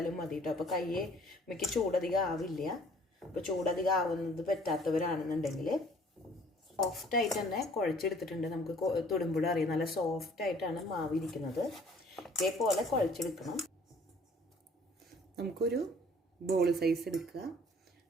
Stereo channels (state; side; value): normal; both; correlation 0.55